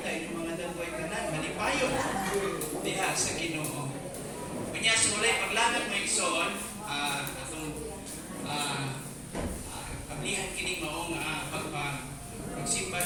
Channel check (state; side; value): identical; both; correlation 1.00